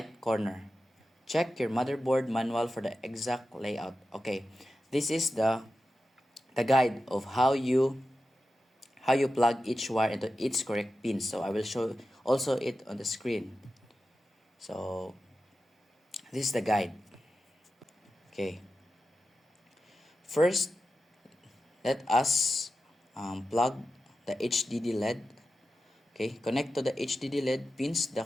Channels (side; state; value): both; normal; correlation 0.92